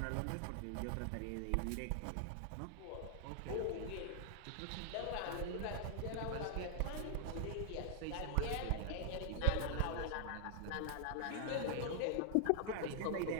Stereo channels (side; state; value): both; different; correlation 0.00